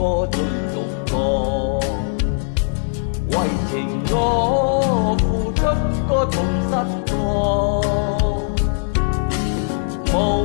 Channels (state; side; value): silent; right; digital silence